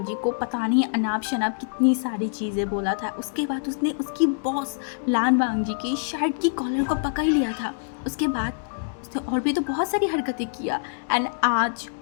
को पता नहीं अनाप शनाप कितनी सारी चीज़ें बोला था। उसके बाद उसने उसकी बॉस लान वांगजी की शर्ट की कॉलर को पकड़ लिया था। उसके बाद उसने और भी तो बहुत सारी हरकतें किया। एंड आज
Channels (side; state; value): right; silent; digital silence